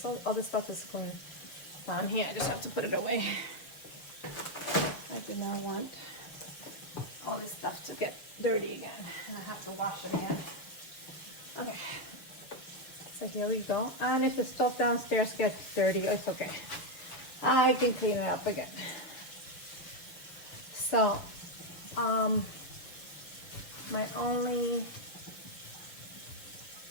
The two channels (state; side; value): late; right; 6.6 ms